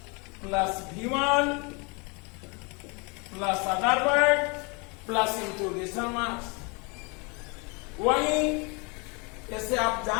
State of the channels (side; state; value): right; quieter; 31.1 dB